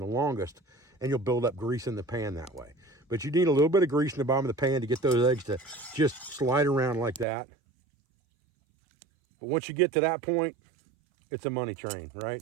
longest, and you'll build up grease in the pan that way. But you need a little bit of grease in the bottom of the pan to get those eggs to just slide around like that. But once you get to that point, it's a money train, right?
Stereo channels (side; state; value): left; drops out; at 7.2 s